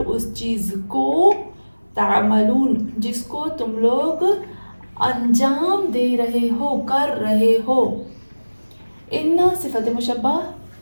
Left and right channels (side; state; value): both; inverted; correlation -1.00